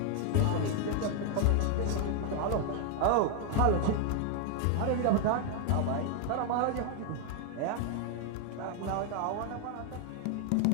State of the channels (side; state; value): both; different; correlation 0.00